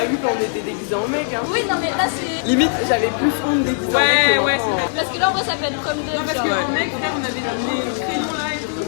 vu quand on était déguisés en mec, hein. Oui, non, mais là c'est. Limite, j'avais plus honte déguisés en mec que ouais, maintenant. Parce que là, en vrai, ça peut être comme deux. Non, parce qu'en mec, frère, on avait le crayon là et tout.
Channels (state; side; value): silent; right; digital silence